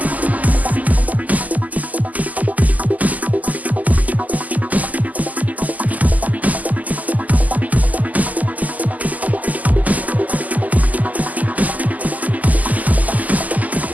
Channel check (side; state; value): left; late; 0.078 ms